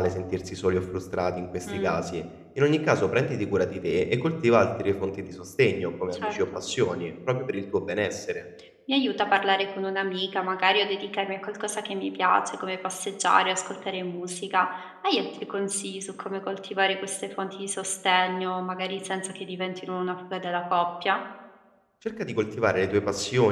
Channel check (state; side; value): identical; both; correlation 1.00